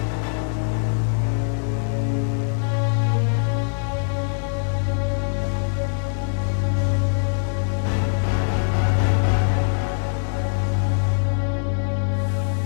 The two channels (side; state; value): right; silent; digital silence